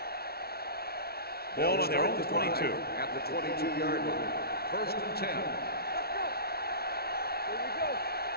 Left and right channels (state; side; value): late; right; 0.45 ms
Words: Ball on their own 22. At the 22-yard line. 1st and 10.